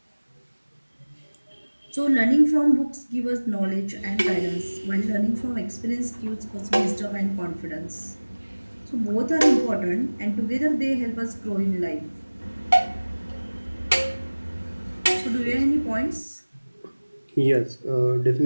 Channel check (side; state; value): both; inverted; correlation -1.00